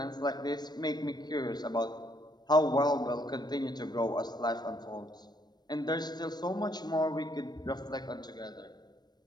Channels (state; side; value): late; right; 0.20 ms